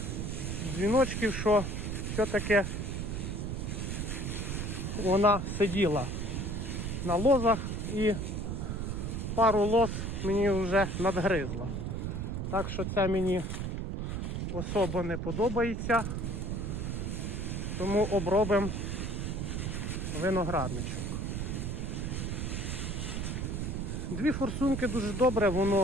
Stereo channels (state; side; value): noise; right; rumble, 2 dB below the sound